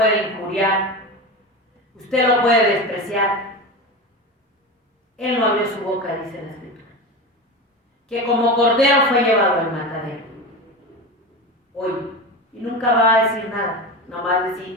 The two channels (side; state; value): both; normal; correlation 0.25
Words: injuriar, usted lo puede despreciar. Él no abrió su boca, dice la Escritura, que como cordero fue llevado al matadero. Hoy, y nunca va a decir nada, nomás